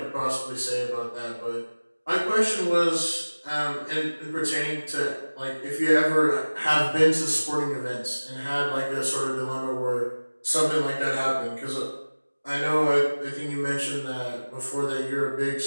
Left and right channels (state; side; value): inverted; both; correlation -1.00